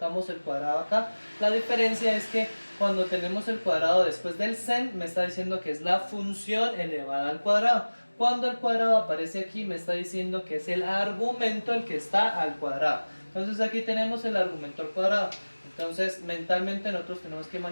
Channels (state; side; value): inverted; both; correlation -1.00